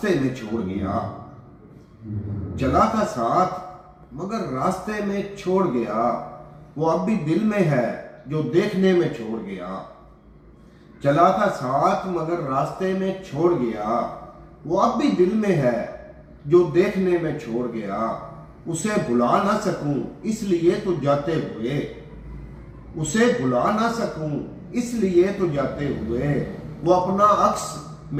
में छोड़ गया, चला था साथ मगर रास्ते में छोड़ गया, वो अब भी दिल में है जो देखने में छोड़ गया। चला था साथ मगर रास्ते में छोड़ गया, वो अब भी दिल में है जो देखने में छोड़ गया। उसे भुला ना सकूं इसलिए तो जाते हुए, उसे भुला ना सकूं इसलिए तो जाते हुए, वो अपना अक्स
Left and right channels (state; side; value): identical; both; correlation 1.00